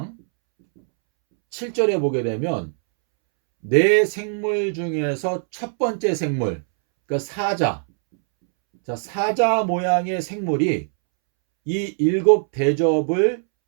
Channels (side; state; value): left; silent; 65 dB below the other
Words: 7절에 보게 되면 네 생물 중에서 첫 번째 생물, 그러니까 사자. 자, 사자 모양의 생물이 이 일곱 대접을